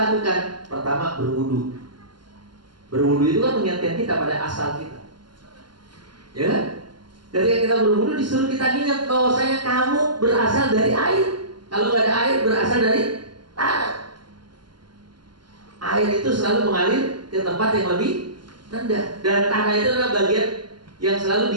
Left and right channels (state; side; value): late; left; 0.71 ms